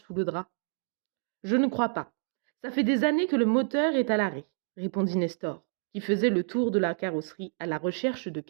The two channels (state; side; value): silent; left; digital silence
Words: le drap. « Je ne crois pas. Ça fait des années que le moteur est à l'arrêt, » répondit Nestor, qui faisait le tour de la carrosserie à la recherche de